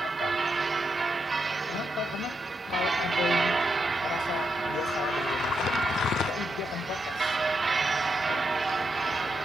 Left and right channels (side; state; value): both; normal; correlation 0.83